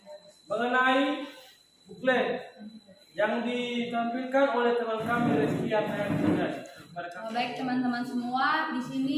mengenai buklet yang ditampilkan oleh teman kami Rizky Yahya. Baik teman-teman semua, di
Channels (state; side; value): identical; both; correlation 1.00